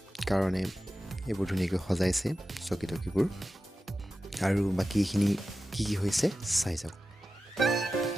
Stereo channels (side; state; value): both; normal; correlation 0.94